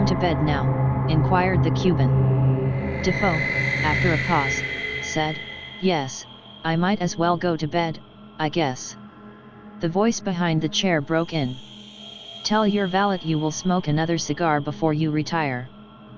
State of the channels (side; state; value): both; identical; correlation 1.00